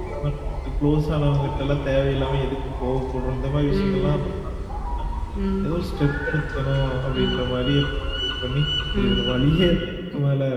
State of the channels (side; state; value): both; identical; correlation 1.00